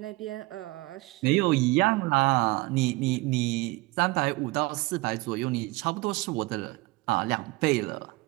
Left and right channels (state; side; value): quieter; left; 23.1 dB